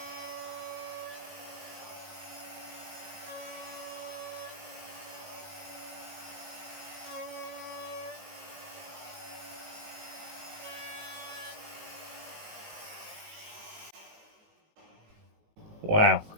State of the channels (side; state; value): left; late; 19 ms